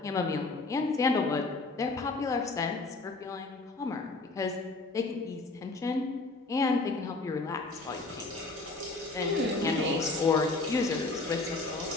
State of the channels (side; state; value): right; quieter; 3.4 dB